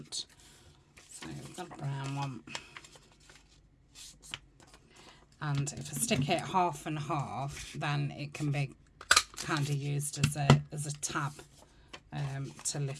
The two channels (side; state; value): both; identical; correlation 1.00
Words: So we've got a brown one. And if I stick it half and half, then it can be kind of used as a tab to